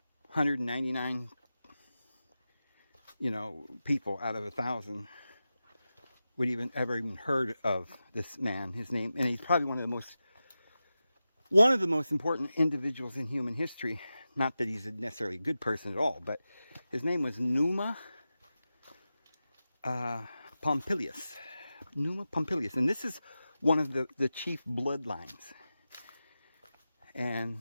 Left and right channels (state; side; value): inverted; both; correlation -0.93